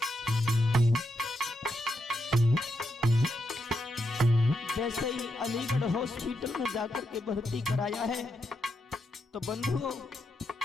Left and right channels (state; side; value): normal; both; correlation 0.83